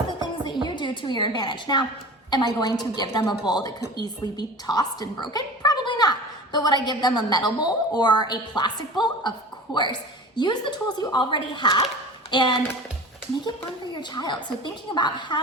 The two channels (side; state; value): both; normal; correlation 0.37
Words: things that you do to your advantage. Now, am I going to give them a bowl that could easily be tossed and broken? Probably not. But would I give them a metal bowl or a plastic bowl? Of course. Use the tools you already have and make it fun for your child. So thinking about